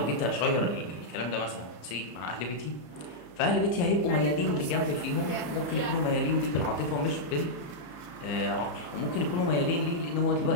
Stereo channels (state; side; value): late; right; 34 ms